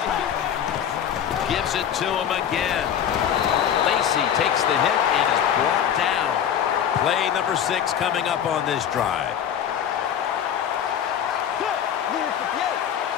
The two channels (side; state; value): right; quieter; 9.1 dB